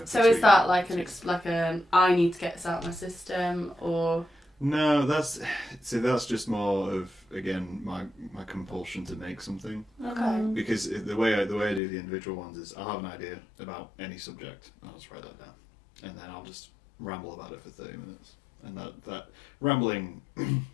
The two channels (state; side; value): drops out; right; at 11.8 s